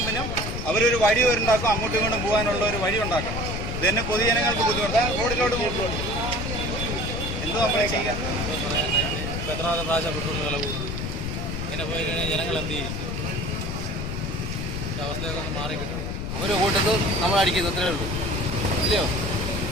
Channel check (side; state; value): left; noise; rumble, 4 dB below the sound